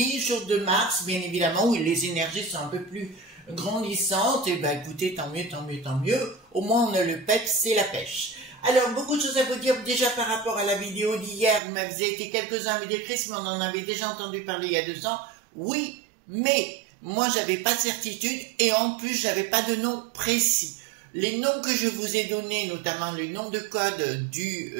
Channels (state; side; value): drops out; left; at 11.6 s